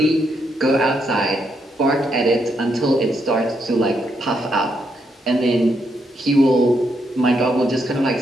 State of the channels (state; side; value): normal; both; correlation 0.78